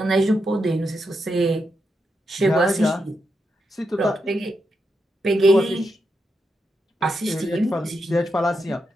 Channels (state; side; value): normal; both; correlation 0.84